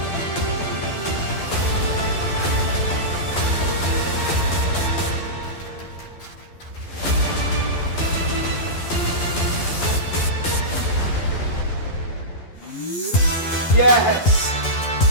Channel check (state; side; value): late; right; 12 ms